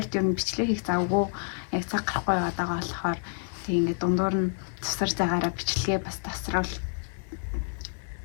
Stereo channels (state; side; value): silent; right; 59 dB below the other